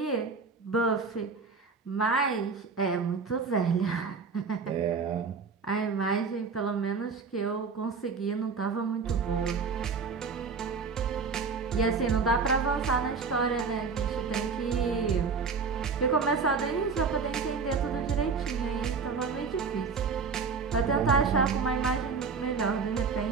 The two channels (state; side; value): quieter; left; 5.0 dB